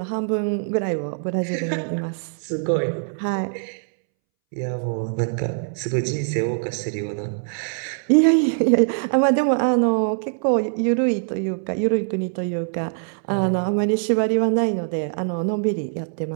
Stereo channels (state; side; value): silent; left; 64 dB below the other